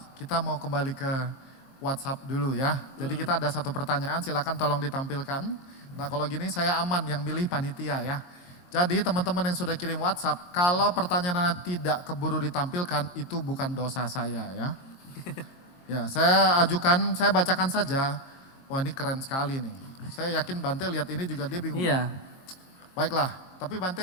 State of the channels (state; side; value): late; right; 22 ms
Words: kita mau kembali ke WhatsApp dulu ya. Jadi kita ada 1 pertanyaan, silakan tolong ditampilkan. Nah kalau gini saya aman, yang milih panitia ya. Jadi teman-teman yang sudah kirim WhatsApp, kalau pertanyaan tidak keburu ditampilkan, itu bukan dosa saya ya. Ya, saya ajukan, saya bacakan saja. Wah ini keren sekali nih. Saya yakin Bante lihat ini juga dia bingung. Iya. Baiklah, tapi Bante